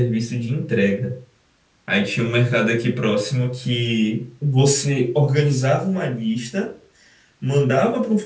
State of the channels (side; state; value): both; identical; correlation 1.00